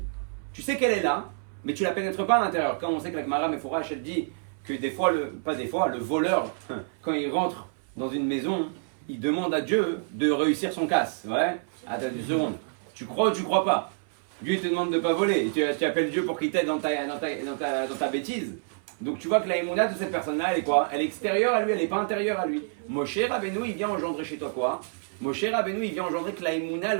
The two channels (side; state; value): left; silent; 60 dB below the other